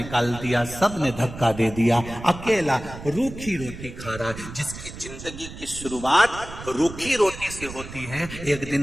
दिया, सबने धक्का दे दिया, अकेला रूखी रोटी खा रहा है। जिसकी जिंदगी की शुरुआत रूखी रोटी से होती है, एक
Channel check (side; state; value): right; noise; rumble, 12 dB below the sound